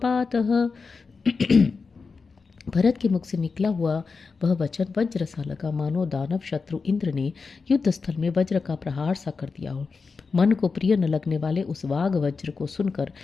भरत के मुख से निकला हुआ वह वचन वज्र सा लगा, मानो दानव शत्रु इंद्र ने युद्ध स्थल में वज्र का प्रहार सा कर दिया हो। मन को प्रिय न लगने वाले उस वाग वज्र को सुनकर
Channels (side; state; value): right; quieter; 4.7 dB